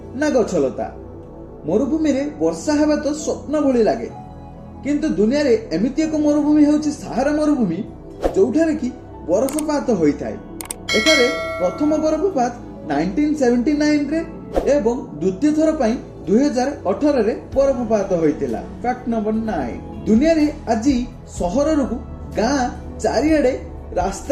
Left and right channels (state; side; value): identical; both; correlation 1.00